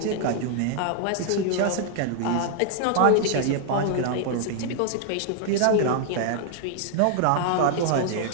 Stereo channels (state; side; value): different; both; correlation 0.00